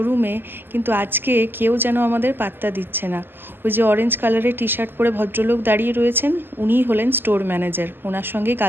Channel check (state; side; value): late; left; 0.097 ms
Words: কিন্তু আজকে কেউ যেন আমাদের পাত্তা দিচ্ছে না। ওই যে অরেঞ্জ কালারের টি শার্ট পরে ভদ্রলোক দাঁড়িয়ে রয়েছেন, উনিই হলেন স্টোর ম্যানেজার। ওনার সঙ্গেই